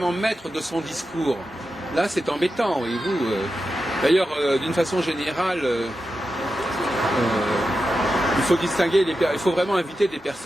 maître de son discours. Là, c'est embêtant, voyez-vous. D'ailleurs, d'une façon générale, il faut distinguer, il faut vraiment inviter des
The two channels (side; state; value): both; normal; correlation 0.90